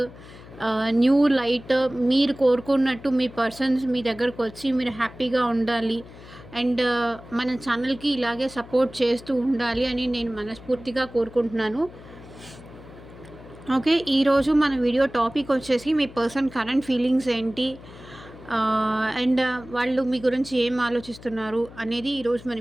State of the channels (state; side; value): noise; left; hum, 18 dB below the sound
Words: న్యూ లైట్, మీరు కోరుకున్నట్టు మీ పర్సన్స్ మీ దగ్గరకు వచ్చి మీరు హ్యాపీగా ఉండాలి. అండ్ మన ఛానల్కి ఇలాగే సపోర్ట్ చేస్తూ ఉండాలి అని నేను మనస్ఫూర్తిగా కోరుకుంటున్నాను. ఓకే, ఈరోజు మన వీడియో టాపిక్ వచ్చేసి మీ పర్సన్ కరెంట్ ఫీలింగ్స్ ఏంటి, అండ్ వాళ్ళు మీ గురించి ఏం ఆలోచిస్తున్నారు అనేది ఈరోజు మన